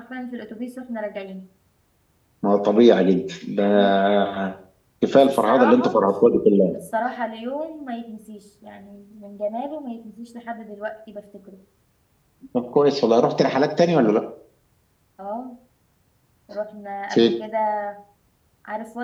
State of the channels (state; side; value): identical; both; correlation 1.00